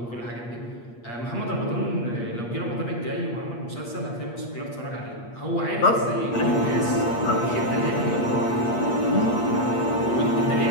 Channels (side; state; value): right; late; 8.5 ms